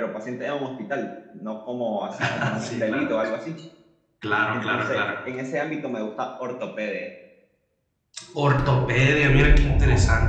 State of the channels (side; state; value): both; identical; correlation 1.00